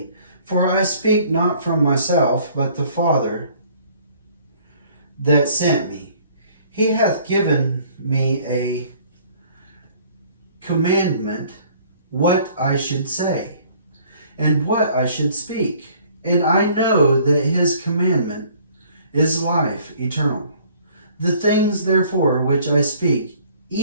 For I speak not from myself, but the Father that sent me. He hath given me a commandment what I should say, and what I should speak. And I know that his commandment is life eternal. The things, therefore, which I speak,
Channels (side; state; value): both; inverted; correlation -0.57